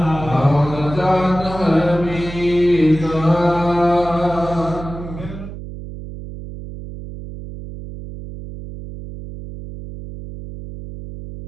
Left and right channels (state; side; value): noise; right; hum, 11 dB below the sound